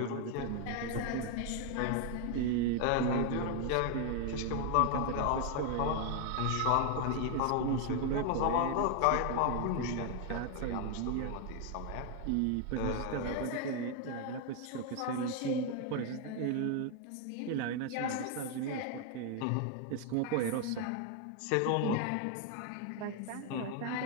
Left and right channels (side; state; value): both; different; correlation 0.01